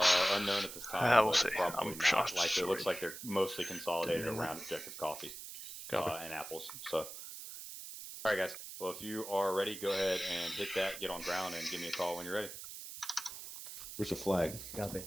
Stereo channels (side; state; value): right; noise; hiss, 10 dB below the sound